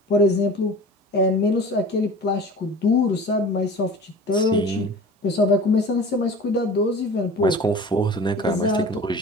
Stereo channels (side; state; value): both; normal; correlation 0.39